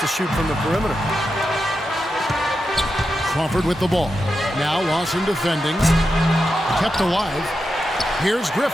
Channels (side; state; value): both; normal; correlation 0.88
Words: shoot from the perimeter. Crawford with the ball. Now Lawson defending. Kept alive. Here's